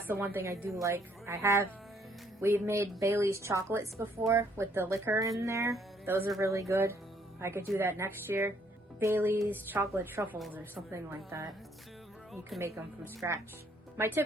the one thing I do like. We've made Bailey's chocolates before with the liquor in there. Those are really good. I could do that next year. Bailey's chocolate truffles or something like that. You can make them from scratch. My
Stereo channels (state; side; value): normal; both; correlation 0.66